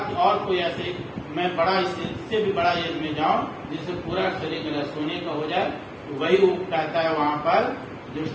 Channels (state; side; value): identical; both; correlation 1.00